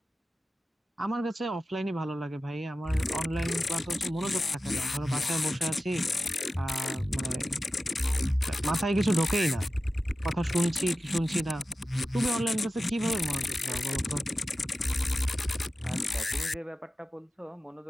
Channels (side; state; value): both; normal; correlation 0.94